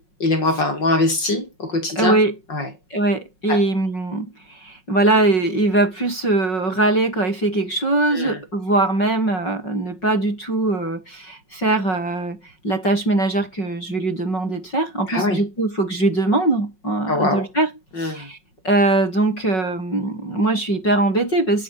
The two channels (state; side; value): late; right; 5.4 ms